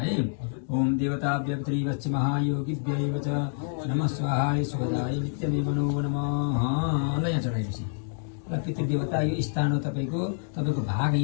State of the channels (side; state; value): right; silent; digital silence